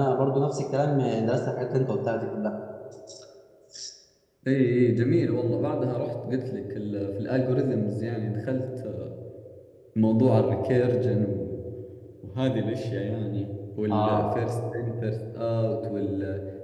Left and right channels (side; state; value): both; identical; correlation 1.00